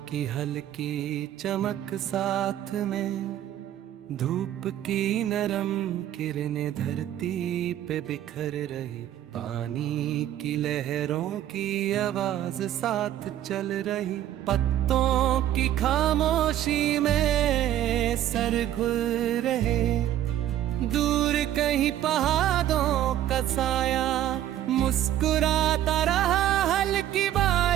की हल्की चमक साथ में, धूप की नरम किरणें धरती पे बिखर रही, पानी की लहरों की आवाज साथ चल रही। पत्तों की खामोशी में सर खुल रहे, दूर कहीं पहाड़ों का साया मुस्कुराता रहा। हल्की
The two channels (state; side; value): quieter; left; 12.0 dB